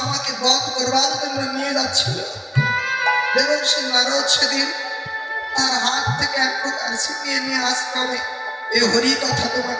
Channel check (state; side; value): identical; both; correlation 1.00